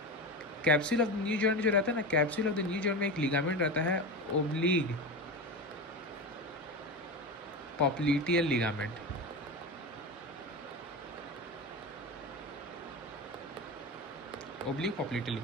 capsule of the new joint जो रहता है ना, capsule of the new joint में एक लिगामेंट रहता है oblique popliteal ligament, oblique popliteal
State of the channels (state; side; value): normal; both; correlation 0.23